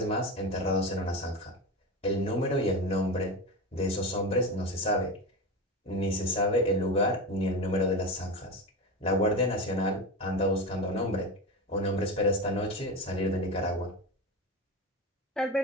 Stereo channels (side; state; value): both; normal; correlation 0.23